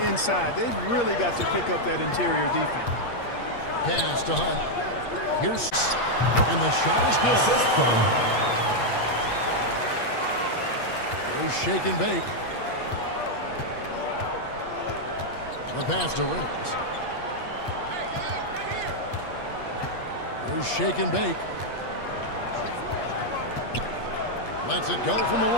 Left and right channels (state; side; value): late; right; 8.5 ms